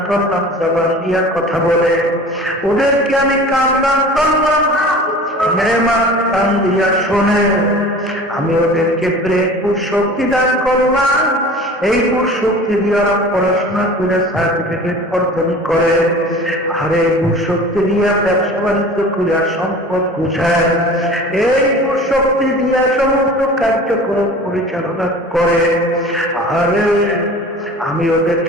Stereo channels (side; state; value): both; normal; correlation 0.41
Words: করলাম জবান দিয়া কথা বলে, ওদেরকে আমি কান দান করলাম নেয়ামত কান দিয়া শোনে, আমি ওদেরকে ব্রেন শক্তি দান করলাম, এই শক্তি দিয়ে ওরা পড়াশোনা করে সার্টিফিকেট অর্জন করে, আর এই শক্তি দিয়ে ব্যবসা বাণিজ্য করে সম্পদ গুছায়, এই শক্তি দিয়ে সমস্ত কার্যক্রম পরিচালনা করে। আরে আমি